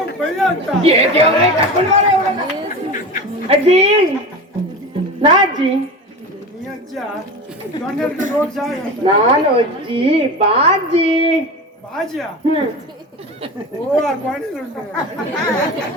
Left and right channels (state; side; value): normal; both; correlation 0.29